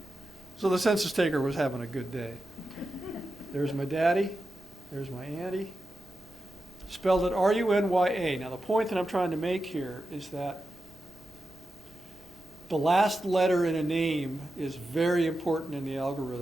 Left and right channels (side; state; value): both; normal; correlation 0.91